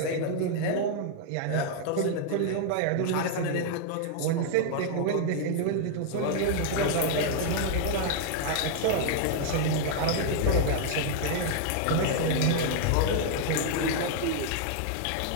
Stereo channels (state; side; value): different; both; correlation 0.00